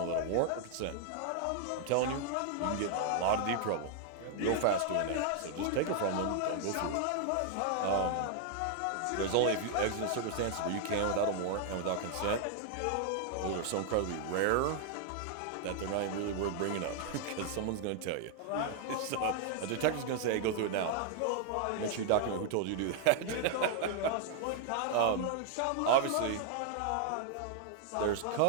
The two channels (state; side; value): different; both; correlation 0.00